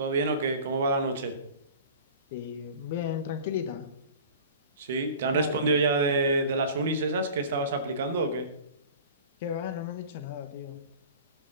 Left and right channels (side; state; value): both; inverted; correlation -0.40